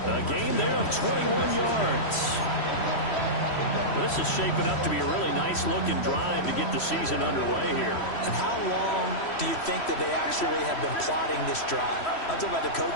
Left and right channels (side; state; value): right; late; 3.1 ms